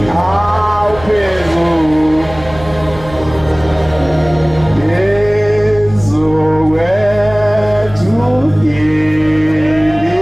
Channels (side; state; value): right; noise; hum, 16 dB below the sound